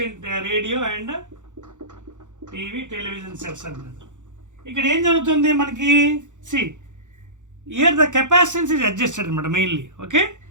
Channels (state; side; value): late; left; 0.85 ms